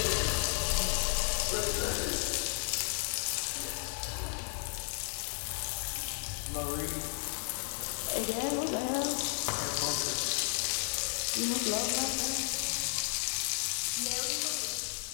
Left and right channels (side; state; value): right; silent; 55 dB below the other